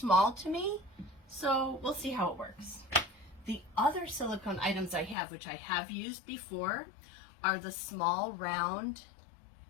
to me, so we'll see how it works. The other silicone items I have, which I have used before, are the small round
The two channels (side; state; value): right; drops out; at 5.2 s